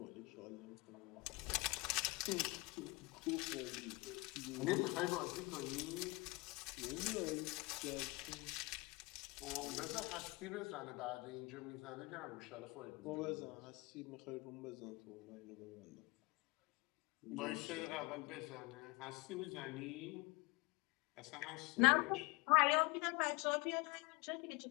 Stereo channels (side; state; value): right; quieter; 25.9 dB